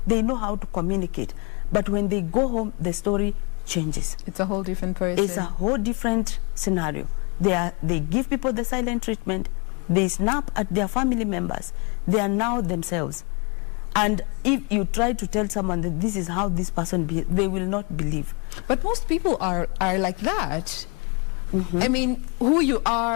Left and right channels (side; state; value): right; quieter; 32.7 dB